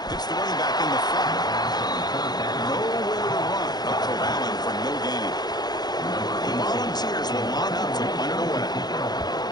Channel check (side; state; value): right; late; 0.20 ms